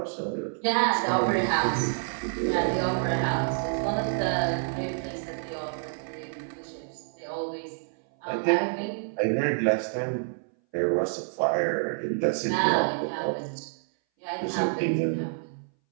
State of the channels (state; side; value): silent; left; 59 dB below the other